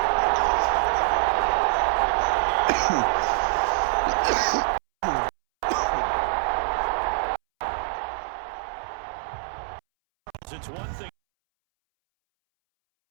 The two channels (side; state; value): left; silent; 62 dB below the other